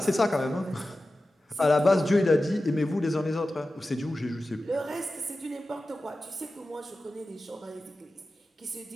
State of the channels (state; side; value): normal; both; correlation 0.94